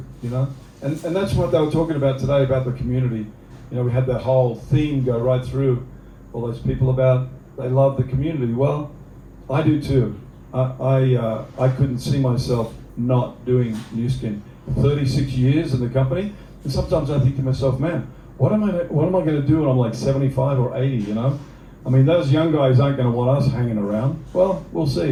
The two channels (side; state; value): both; identical; correlation 1.00